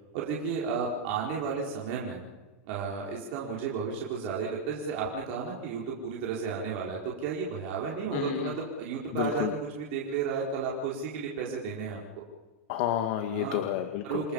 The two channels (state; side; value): normal; both; correlation -0.02